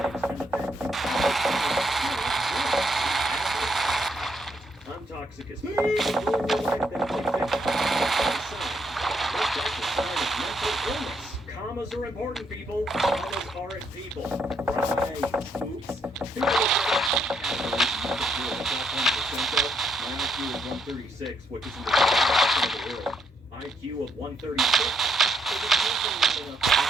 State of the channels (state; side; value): normal; both; correlation 0.74